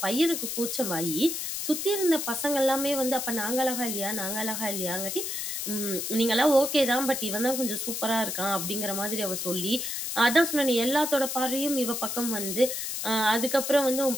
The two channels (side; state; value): left; noise; hiss, 3 dB below the sound